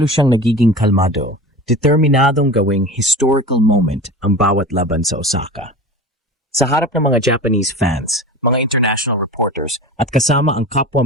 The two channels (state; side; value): normal; both; correlation 0.33